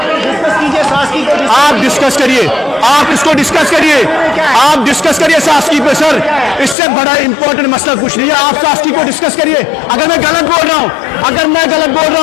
आप डिस्कस करिए, आप इसको डिस्कस करिए, आप डिस्कस करिए सास्की पे सर। इससे बड़ा इंपॉर्टेंट मसला कुछ नहीं है। आप सास्की को डिस्कस करिए। अगर मैं गलत बोल रहा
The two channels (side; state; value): right; drops out; at 6.8 s